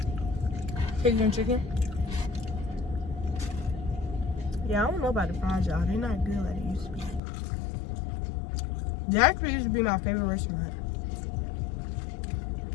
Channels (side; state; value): right; drops out; at 7.2 s